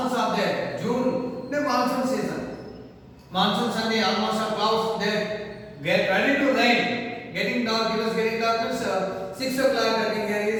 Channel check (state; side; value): identical; both; correlation 1.00